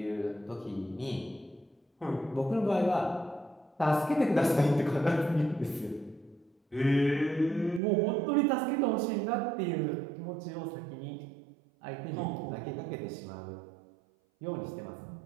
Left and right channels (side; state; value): left; drops out; at 7.8 s